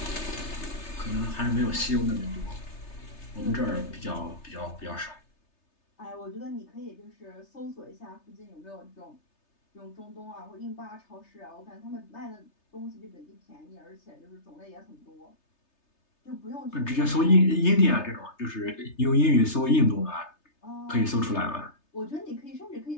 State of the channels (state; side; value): late; right; 3.3 ms